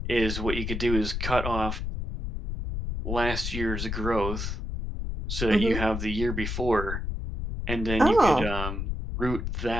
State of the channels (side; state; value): left; noise; rumble, 4 dB below the sound